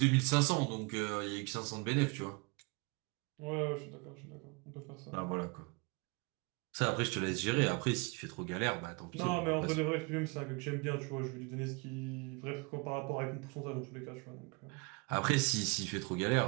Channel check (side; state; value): left; quieter; 30.0 dB